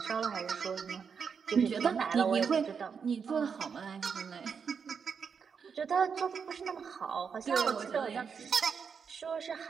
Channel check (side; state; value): left; quieter; 6.3 dB